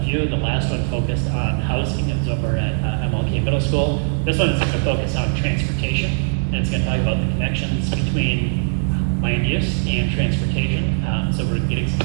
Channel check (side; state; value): left; silent; 64 dB below the other